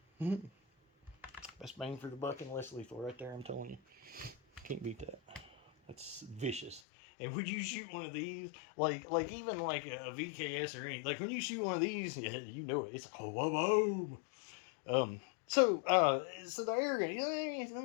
best bang for the buck and less lethal right there, I'm telling you. Can't beat that. That's vicious. And would you shoot one of these, like even like a VKS or anything, like when you shoot one of these, yeah, you know it. It's like, oh, boom. So the air gun, let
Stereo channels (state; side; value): drops out; right; at 6.8 s